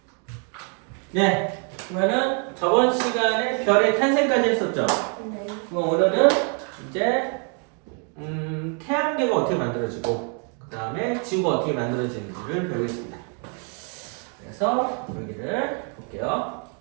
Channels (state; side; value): quieter; left; 39.6 dB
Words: 네, 그러면은 저번 시간에 별의 탄생까지 했었죠. 네. 그럼 오늘은 이제 태양계가 어떻게 만들어지고 그 다음에 지구가 어떻게 만들어지는지를 배우겠습니다. 그래서 여기를 볼게요.